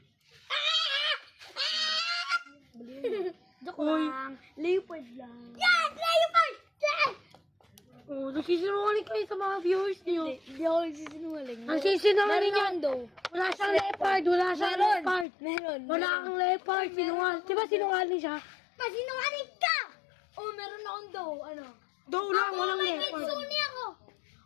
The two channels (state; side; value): drops out; right; at 15.2 s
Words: Joke lang. Leopard lang. Yes! Leopard! Yes! Oh, nagsisinungaling kayo sa mga viewers niyo. Hindi ako nagsisinungaling. Ang sisinungaling Meron yan. daw. Wala siyang leopard. Wala siyang leopard. Meron. Wala kang leopard. Sinungaling. Di ba sinungaling siya? Pasinungaling ka! Oh, meron akong daw. Ano? Daw lang. Walang May leopard. kitsune ako.